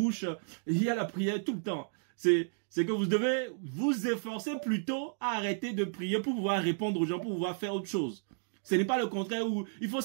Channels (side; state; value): left; silent; digital silence